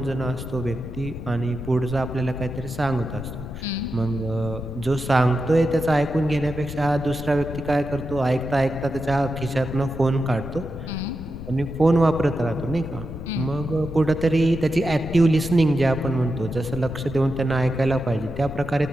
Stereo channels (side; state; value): left; noise; rumble, 9 dB below the sound